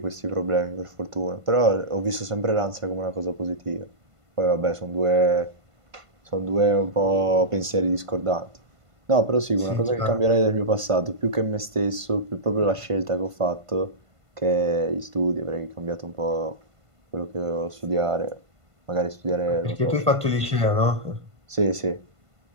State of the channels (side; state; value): left; late; 1.5 ms